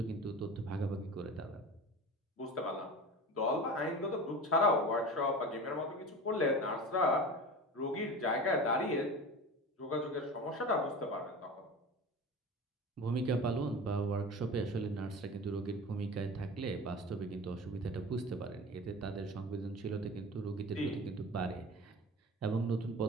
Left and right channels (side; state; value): both; normal; correlation 0.33